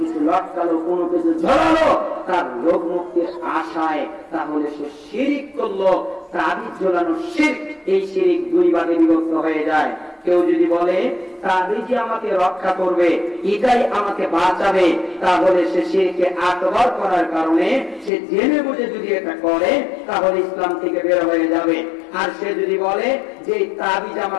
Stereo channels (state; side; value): drops out; right; at 18.1 s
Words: কিছু লটকালো, কোনো কিছু ঝোলালো তার রোগ মুক্তির আশায়, তাহলে সে শিরক করলো। তাবিজ ঝোলানো শিরক, এই শিরক দুই ভাগে বিভক্ত হয়ে যায়। কেউ যদি বলে তাবিজই আমাকে রক্ষা করবে, এটাই আমাকে বাঁচাবে, তাহলে সে শিরকে আকবার করার কারণে সে জেনে বুঝে যদি এটা করে তাহলে ইসলাম থেকে বের হয়ে যাবে। আর সে যদি বলে যে তাবিজ